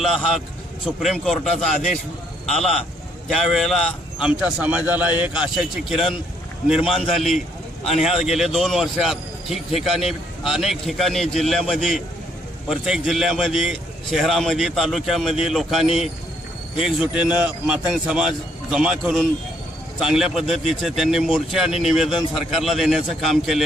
हा सुप्रीम कोर्टाचा आदेश आला त्यावेळेला आमच्या समाजाला एक आशेची किरण निर्माण झाली आणि ह्या गेले 2 वर्षात ठिकठिकाणी अनेक ठिकाणी जिल्ह्यामध्ये प्रत्येक जिल्ह्यामध्ये शहरामध्ये तालुक्यामध्ये लोकांनी एकजुटीनं मातंग समाज जमा करून चांगल्या पद्धतीचे त्यांनी मोर्चे आणि निवेदन सरकारला देण्याचं काम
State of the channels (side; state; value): both; normal; correlation 0.69